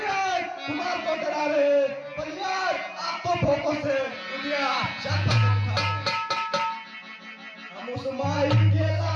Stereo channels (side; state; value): both; identical; correlation 1.00